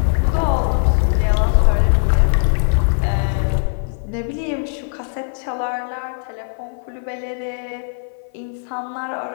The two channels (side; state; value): right; silent; 56 dB below the other